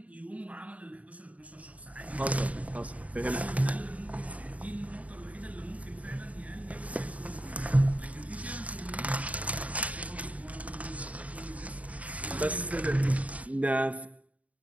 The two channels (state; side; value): late; left; 0.069 ms